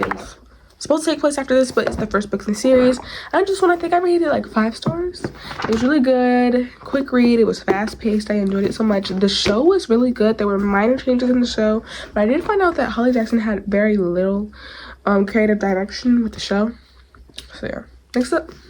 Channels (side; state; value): both; identical; correlation 1.00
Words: supposed to take place after this, but it's the first book in the series. I think I rated it like 5 stars. It was really good, quick read. It was fast paced. I enjoyed it so much. The show was really good. There were minor changes in the show, but I did find out that Holly Jackson had very little creative direction with the show. So yeah. Next up